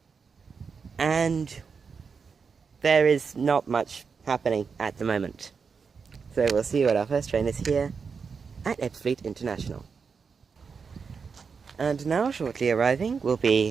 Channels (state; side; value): quieter; left; 5.6 dB